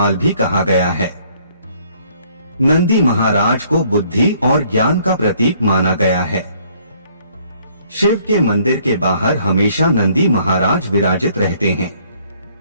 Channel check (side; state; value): both; inverted; correlation -0.63